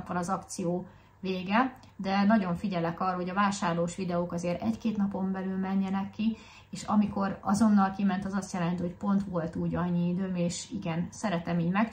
van az akció vége, de nagyon figyelek arra, hogy a vásárlós videók azért 1-2 napon belül menjenek ki, és amikor azonnal kiment, az azt jelenti, hogy pont volt úgy annyi időm, és igen, szeretem így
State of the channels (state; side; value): identical; both; correlation 1.00